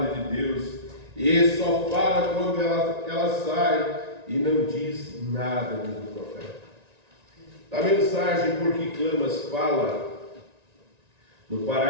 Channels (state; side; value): late; left; 1.9 ms